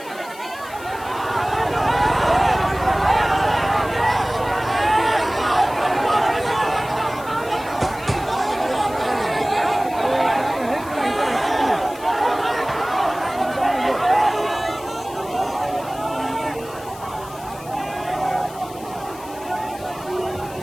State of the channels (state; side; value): noise; left; hiss, 19 dB below the sound